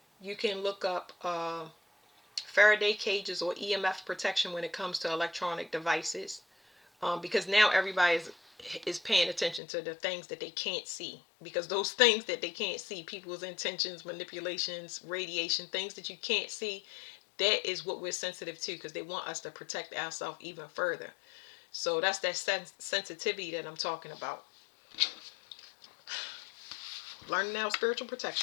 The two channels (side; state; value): right; drops out; at 9.6 s